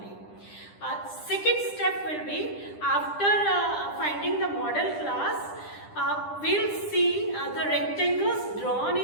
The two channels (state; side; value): late; right; 10 ms